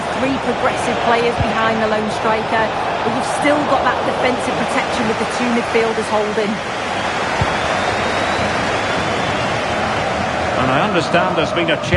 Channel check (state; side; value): identical; both; correlation 1.00